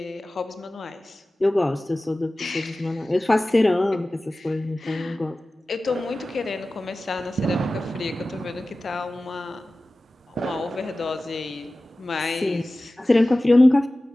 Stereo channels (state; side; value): normal; both; correlation 0.96